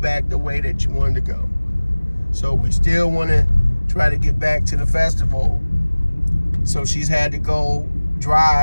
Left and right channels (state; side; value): inverted; both; correlation -1.00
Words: the way that you wanted to go. So we still want to try to get back to the festival. So she's had to go